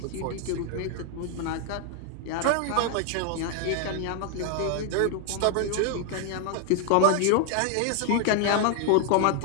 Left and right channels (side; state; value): both; different; correlation 0.00